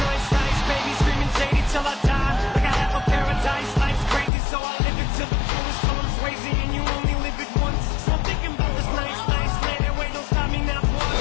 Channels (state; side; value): drops out; right; at 4.3 s